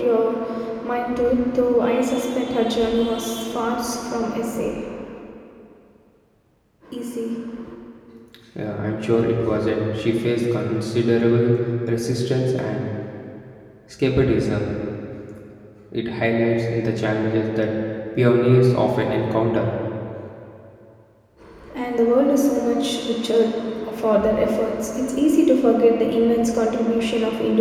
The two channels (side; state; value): both; identical; correlation 1.00